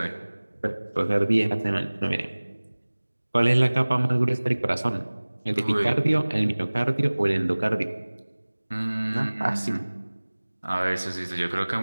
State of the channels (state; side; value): inverted; both; correlation -1.00